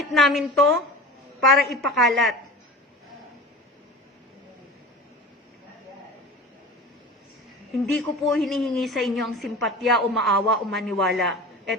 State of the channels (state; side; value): normal; both; correlation 0.35